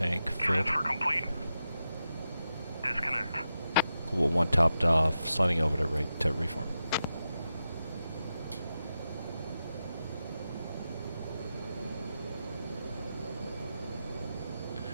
filled. Transfer complete. Disconnect. Cool, one topped off, sliding over to right to reform.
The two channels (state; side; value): inverted; both; correlation -0.89